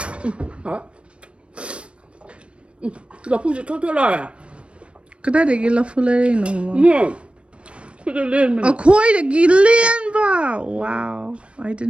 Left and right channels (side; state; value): left; late; 0.059 ms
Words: Hả? Lafu sẽ thoát lại à? Cái đấy để ghi Lafu lên nó mà. Put it in. Oh, koi để ghi lên ba. Wow, I